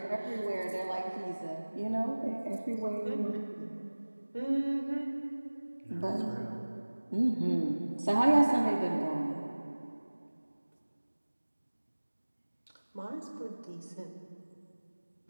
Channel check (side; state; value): both; inverted; correlation -1.00